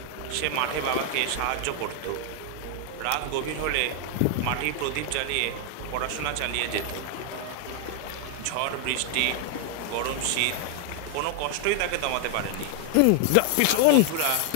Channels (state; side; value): different; both; correlation 0.00